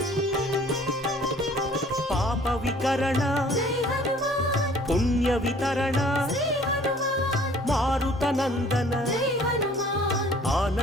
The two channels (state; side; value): normal; both; correlation 0.54